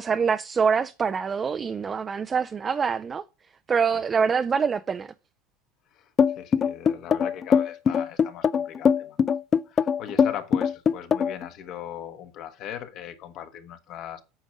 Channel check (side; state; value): both; normal; correlation 0.76